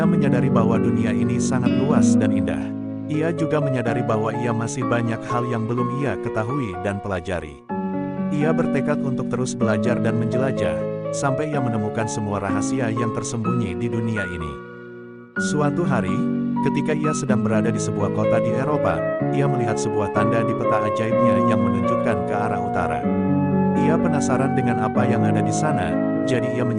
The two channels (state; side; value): identical; both; correlation 1.00